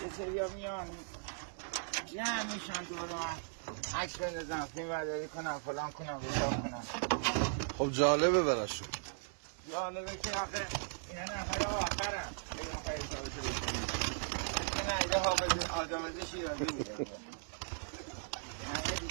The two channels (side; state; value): left; silent; digital silence